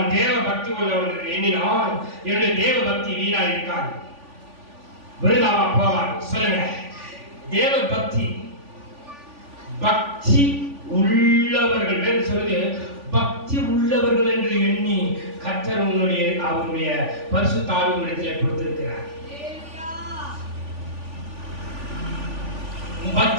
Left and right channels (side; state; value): left; late; 3.5 ms